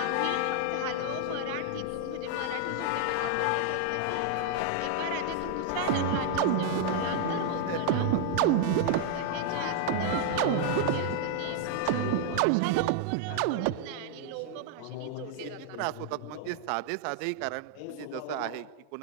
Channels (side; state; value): both; different; correlation 0.00